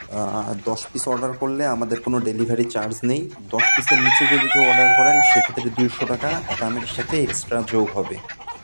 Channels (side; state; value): both; inverted; correlation -1.00